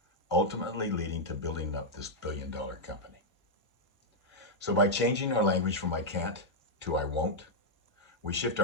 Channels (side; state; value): both; normal; correlation -0.03